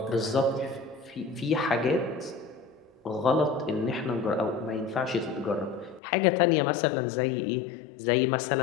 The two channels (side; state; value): right; drops out; at 6.0 s